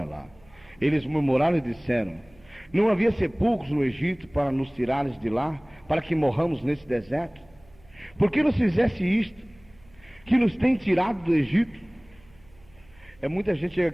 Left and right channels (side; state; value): right; noise; hum, 28 dB below the sound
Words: lá. Eles murmuraram e disseram: não havia sepulcros no Egito para nos tirares de lá, para que morramos nesse deserto? Por que nos fizesse isto, que nos tem tirado do Egito? É muita gente chega